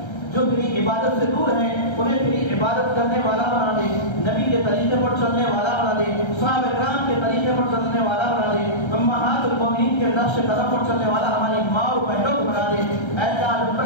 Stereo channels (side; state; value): right; late; 1.3 ms